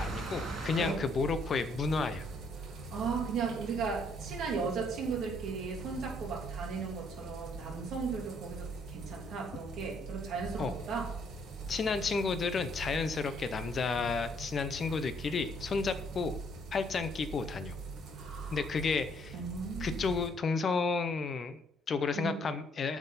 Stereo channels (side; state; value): both; normal; correlation 0.67